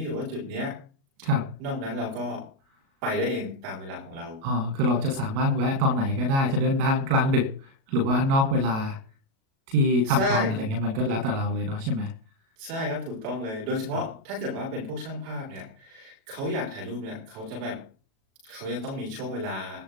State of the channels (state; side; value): late; left; 37 ms